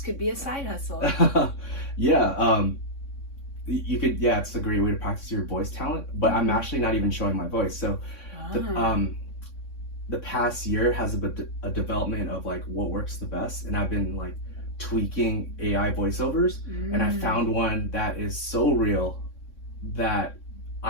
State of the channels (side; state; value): right; late; 3.6 ms